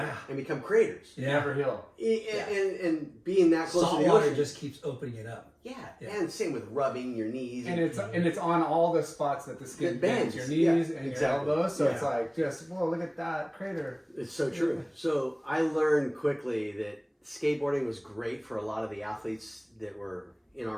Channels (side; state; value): both; identical; correlation 1.00